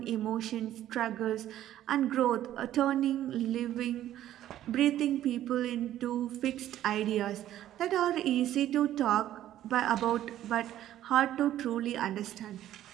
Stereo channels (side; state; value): left; quieter; 12.6 dB